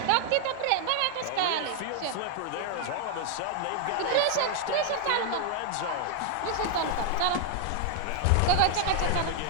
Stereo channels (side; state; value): both; different; correlation 0.00